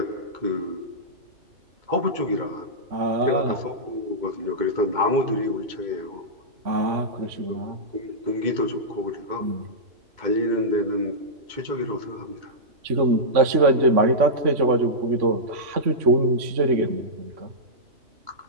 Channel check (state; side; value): late; left; 3.5 ms